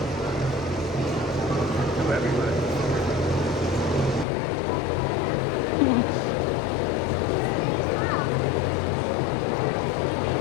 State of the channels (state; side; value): drops out; right; at 4.2 s